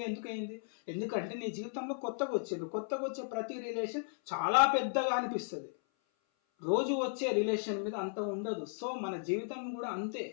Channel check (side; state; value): right; silent; 54 dB below the other